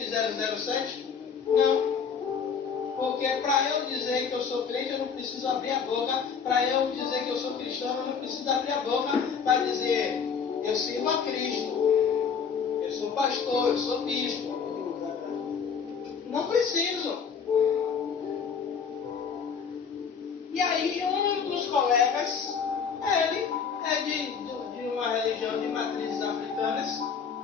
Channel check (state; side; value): quieter; right; 6.4 dB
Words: 007? Não. Porque para eu dizer que eu sou crente, eu não preciso abrir a boca. Para eu dizer que eu sou cristão, eu não preciso abrir a boca para dizer: eu sirvo a Cristo, eu sou pastor, eu sou bispo. Não preciso. E aí um dos colegas, ele é de uma religião de matrizes africanas.